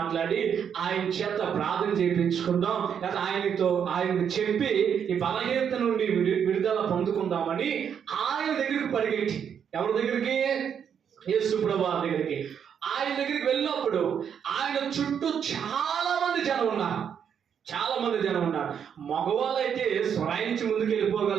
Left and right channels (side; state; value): left; quieter; 7.9 dB